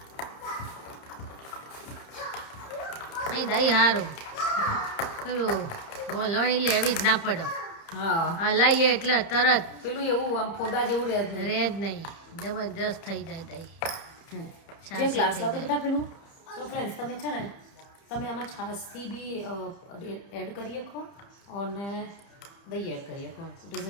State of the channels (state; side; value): late; right; 30 ms